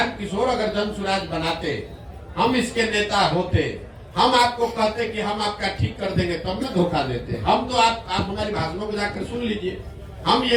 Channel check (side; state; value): both; identical; correlation 1.00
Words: किशोर अगर जन स्वराज बनाते, हम इसके नेता होते, हम आपको कहते कि हम आपका ठीक कर देंगे, तब में धोखा देते। हम तो आप हमारी भाषणों को जाकर सुन लीजिए। हम